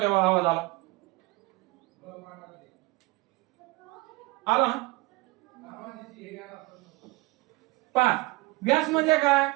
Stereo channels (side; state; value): left; quieter; 23.0 dB